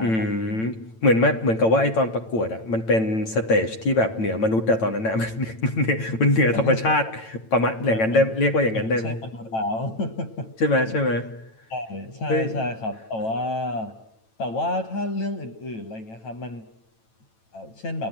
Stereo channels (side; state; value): right; late; 9.0 ms